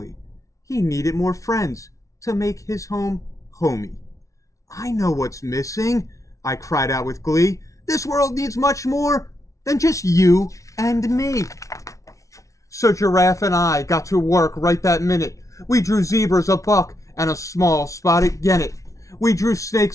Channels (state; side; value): late; right; 0.16 ms